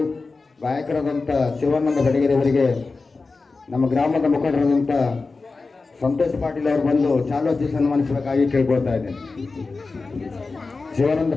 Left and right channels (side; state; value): right; quieter; 4.0 dB